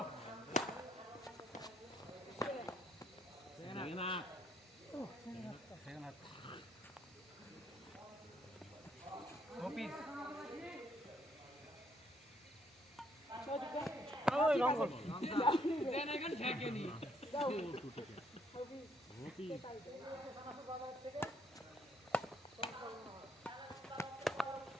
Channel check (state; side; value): normal; both; correlation 0.70